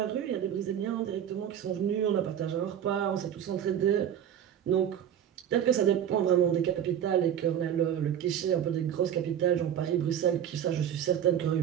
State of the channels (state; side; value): quieter; left; 9.7 dB